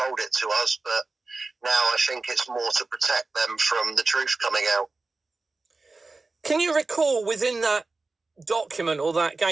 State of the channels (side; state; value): left; quieter; 3.6 dB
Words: it to us, but now I think it's more to protect them from the truth coming out. Can you recall within that document or that